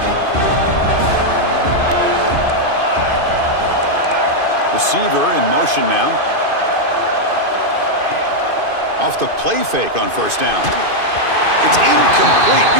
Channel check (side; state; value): left; late; 2.5 ms